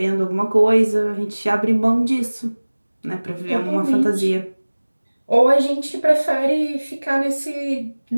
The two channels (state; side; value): inverted; both; correlation -1.00